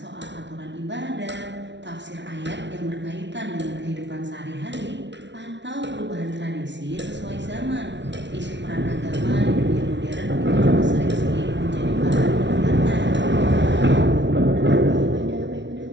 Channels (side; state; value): left; late; 0.51 ms